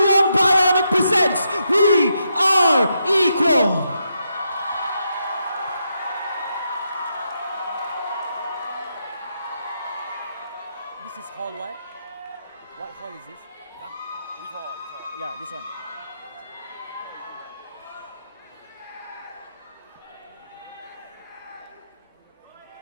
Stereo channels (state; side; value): inverted; both; correlation -0.82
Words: own Bionic presents We Are Equal. This is hall what? What hall is this? Huh? Which hall? Yeah, this one.